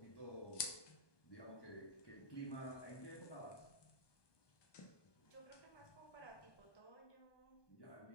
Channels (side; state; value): right; late; 1.2 ms